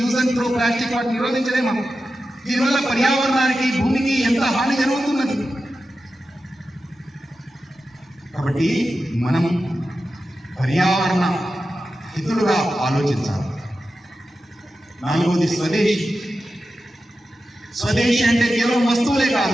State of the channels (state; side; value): normal; both; correlation 0.92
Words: and throw plastic వాటిని నిరోధించలేము. దీనివల్ల పర్యావరణానికి, భూమికి ఎంత హాని జరుగుతున్నది. కాబట్టి మనం పర్యావరణ హితులుగా ఆలోచించాలి. 4వది స్వదేశీ. స్వదేశీ అంటే కేవలం వస్తువులే కాదు.